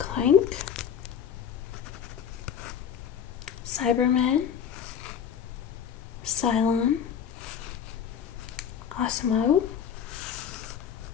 Cyberman, Cylon, Osmo,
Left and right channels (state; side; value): quieter; right; 8.3 dB